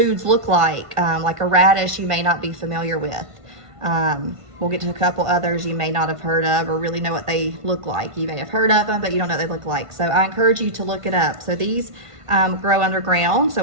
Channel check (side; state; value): left; late; 1.5 ms